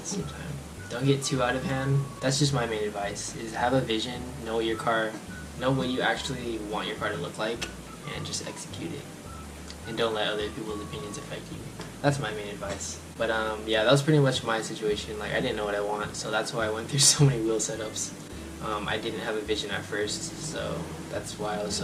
same time. Don't get too out of hand. That's just my main advice: is have a vision, know what you actually want your car to look like, and just execute it. And don't let other people's opinions affect you. That's my main advice. But yeah, that was pretty much my situation. Like I didn't know what I want, so that's why I went through so many wheel setups. I didn't have a vision at first, so that's why I was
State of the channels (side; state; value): both; identical; correlation 1.00